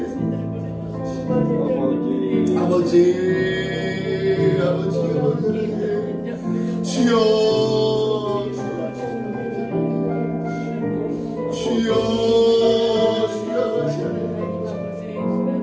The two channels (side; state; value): both; identical; correlation 1.00